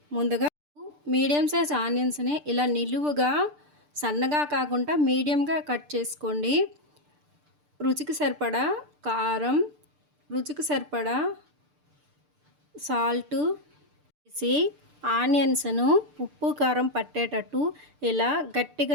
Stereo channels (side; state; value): left; late; 6.7 ms